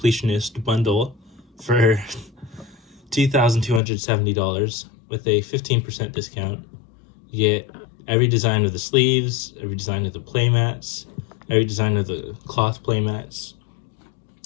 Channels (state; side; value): drops out; right; at 3.8 s